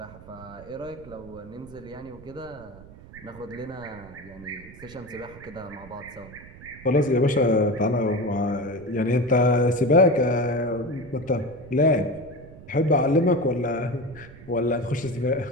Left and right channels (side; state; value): right; noise; rumble, 19 dB below the sound